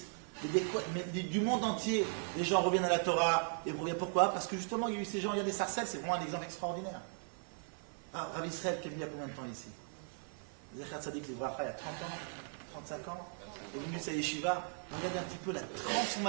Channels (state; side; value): silent; left; 53 dB below the other